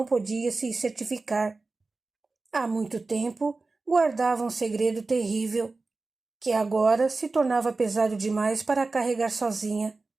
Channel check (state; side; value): quieter; left; 3.6 dB